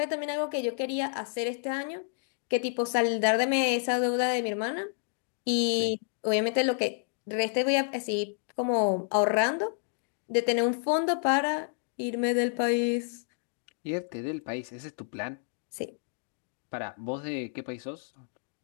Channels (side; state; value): right; silent; 58 dB below the other